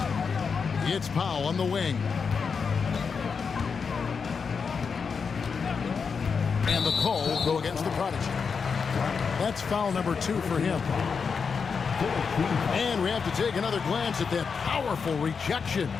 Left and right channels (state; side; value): quieter; right; 5.7 dB